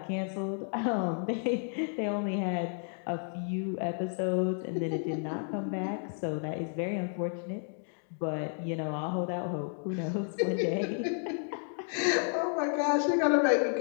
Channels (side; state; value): right; silent; 57 dB below the other